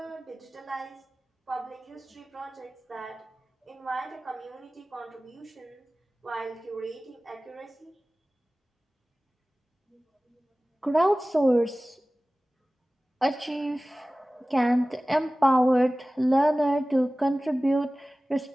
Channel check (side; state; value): both; normal; correlation 0.97